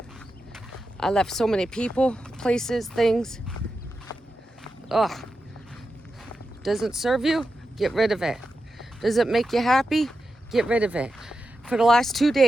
I left so many people, places, things. Ugh. Doesn't serve you? Get rid of it. Does it make you happy? Get rid of it. For the last 2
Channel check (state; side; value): normal; both; correlation 0.90